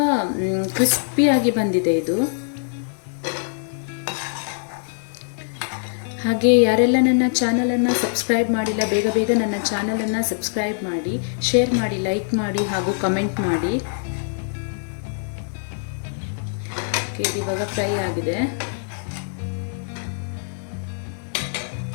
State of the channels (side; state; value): right; silent; digital silence